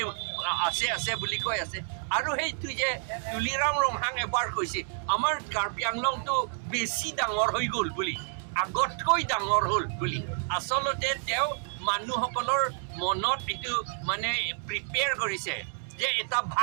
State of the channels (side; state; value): left; silent; 58 dB below the other